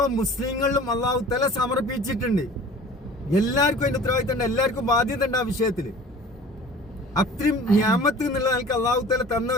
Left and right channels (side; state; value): both; normal; correlation 0.44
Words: മുസ്ലിങ്ങളിലും അല്ലാഹു തആല സമർപ്പിച്ചിട്ടുണ്ട്. എല്ലാവർക്കും അതിന്റെ ഉത്തരവാദിത്വം ഉണ്ട്, എല്ലാവർക്കും ബാധ്യത ഉണ്ട് ആ വിഷയത്തില്. അത്രയും നിയമത്ത് എന്നുള്ള നിലക്ക് അല്ലാഹു തആല തന്ന